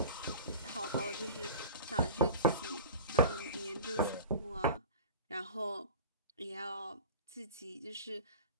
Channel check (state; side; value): inverted; both; correlation -0.37